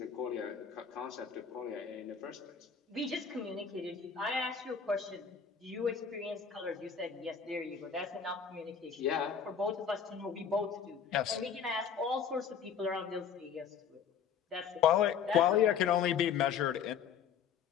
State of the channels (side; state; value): right; quieter; 7.2 dB